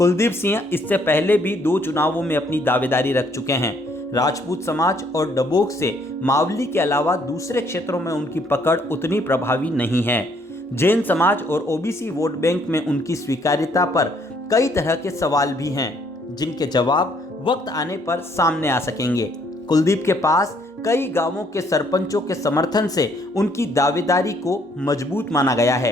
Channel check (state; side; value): normal; both; correlation 0.66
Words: सिंह इससे पहले भी 2 चुनावों में अपनी दावेदारी रख चुके हैं। राजपूत समाज और डबोक से मावली के अलावा दूसरे क्षेत्रों में उनकी पकड़ उतनी प्रभावी नहीं है। जैन समाज और ओबीसी वोट बैंक में उनकी स्वीकार्यता पर कई तरह के सवाल भी हैं, जिनके जवाब वक्त आने पर सामने आ सकेंगे। कुलदीप के पास कई गांवों के सरपंचों के समर्थन से उनकी दावेदारी को मजबूत माना गया